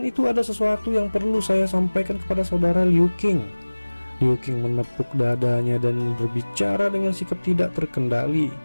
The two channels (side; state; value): both; inverted; correlation -1.00